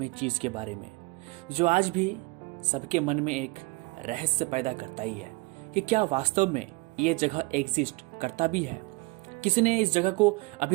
चीज़ के बारे में, जो आज भी सबके मन में एक रहस्य पैदा करता ही है कि क्या वास्तव में ये जगह एग्जिस्ट करता भी है। किसी ने इस जगह को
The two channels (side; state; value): left; quieter; 25.3 dB